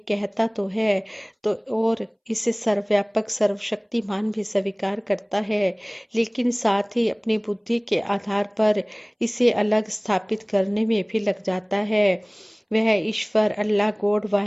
कहता तो है, तो और इसे सर्वव्यापक सर्वशक्तिमान भी स्वीकार करता है, लेकिन साथ ही अपनी बुद्धि के आधार पर इसे अलग स्थापित करने में भी लग जाता है। वह ईश्वर, अल्लाह, गॉड,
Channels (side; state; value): both; identical; correlation 1.00